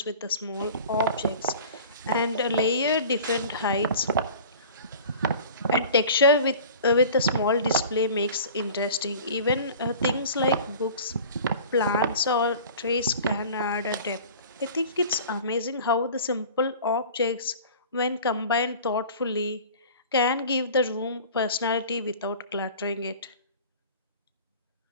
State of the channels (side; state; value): both; inverted; correlation -0.41